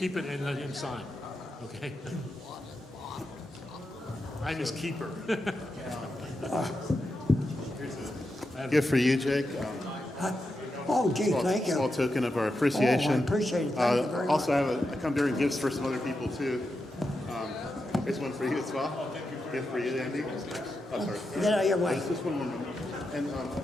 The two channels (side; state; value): both; normal; correlation 0.87